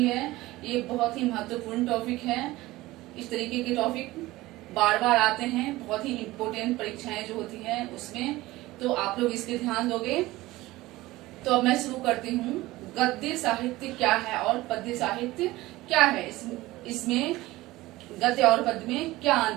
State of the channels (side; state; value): left; quieter; 18.4 dB